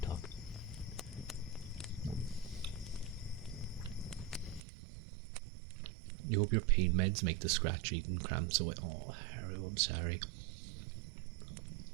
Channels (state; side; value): drops out; left; at 4.6 s